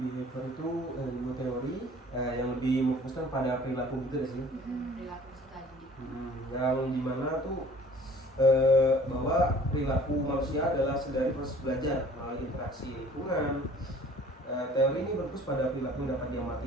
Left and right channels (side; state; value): both; normal; correlation 0.51